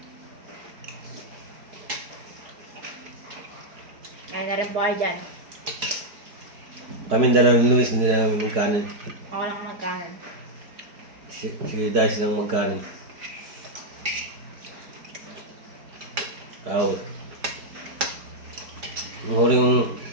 Kain na rin po kayo dyan. Kami dalawang ni Luis, hindi namin magkanin. Ako lang nagkaan. Si Dice lang magkanin. Tao. Ang huling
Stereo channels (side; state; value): left; late; 4.7 ms